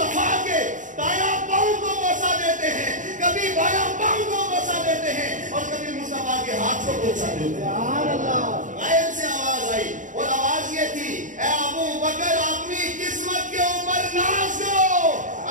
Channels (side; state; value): left; late; 0.37 ms